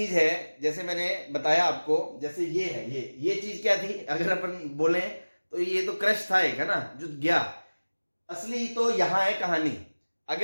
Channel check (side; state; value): both; inverted; correlation -1.00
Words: है, जैसे मैंने बताया आपको, जैसे ये है, ये चीज क्या थी, अगर अपन बोले तो ये तो क्रश था एक, है ना, जो गया। असली तो यहां है कहानी।